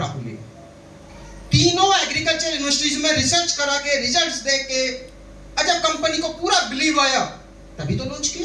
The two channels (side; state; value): both; identical; correlation 1.00